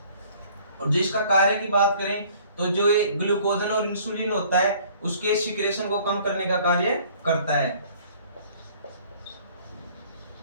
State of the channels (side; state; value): both; inverted; correlation -0.55